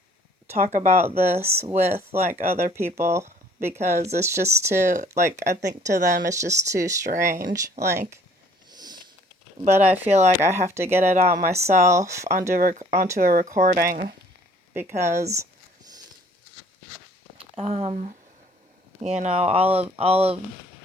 about this with like other people, because it's just too, like, I think to them it's just too strange, like, but I feel like I have to get it out myself onto a recording, because um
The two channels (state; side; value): normal; both; correlation 0.57